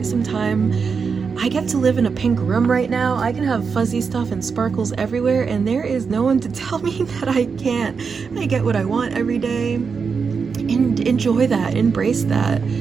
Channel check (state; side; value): quieter; left; 5.5 dB